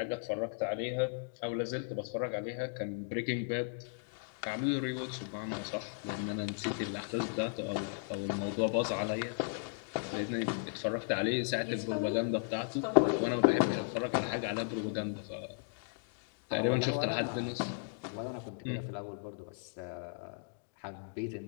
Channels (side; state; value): right; silent; digital silence